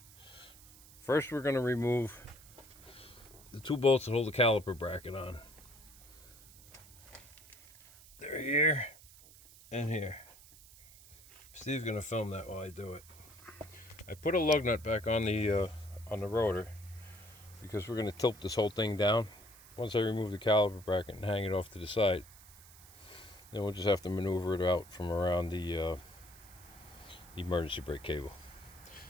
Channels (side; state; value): right; noise; hiss, 21 dB below the sound